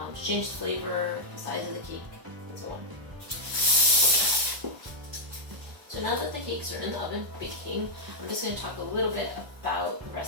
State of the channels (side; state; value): left; late; 1.0 ms